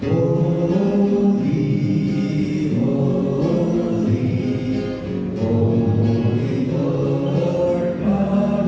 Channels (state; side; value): identical; both; correlation 1.00